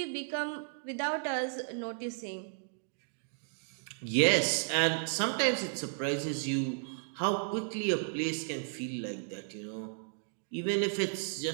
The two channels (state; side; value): silent; left; digital silence